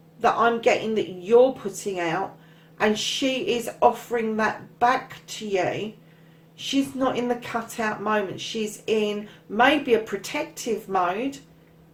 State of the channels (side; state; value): both; identical; correlation 1.00